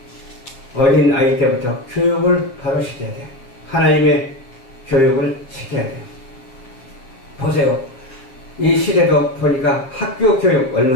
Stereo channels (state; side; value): late; right; 7.6 ms